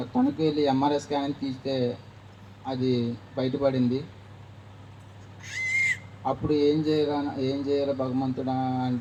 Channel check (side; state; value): both; identical; correlation 1.00